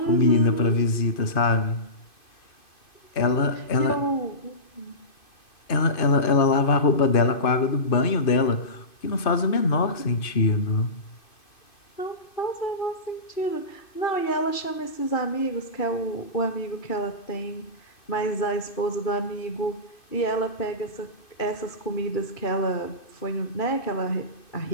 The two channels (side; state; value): right; late; 2.5 ms